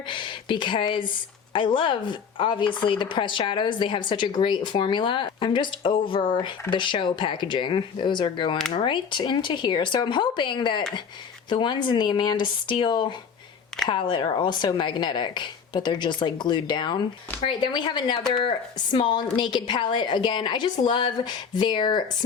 because I love, obviously, the pressed shadows. They have such a great formula. I'm just over the show packaging. Those are going right into here. So I'm hoping that the ones in the Amanda Steele palette are also magnetic, but they're just like glued down. All right, then we have another small naked palette. Again, I just love their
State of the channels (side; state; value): right; quieter; 6.5 dB